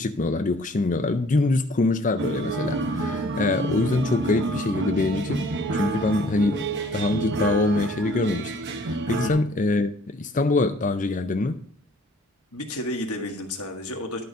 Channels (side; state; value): both; normal; correlation 0.56